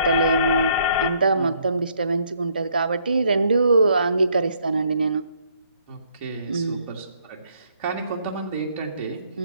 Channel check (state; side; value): inverted; both; correlation -0.67